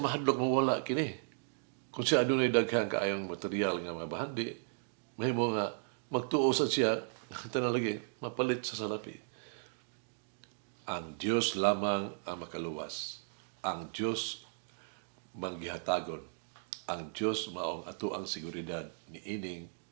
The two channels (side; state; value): left; silent; digital silence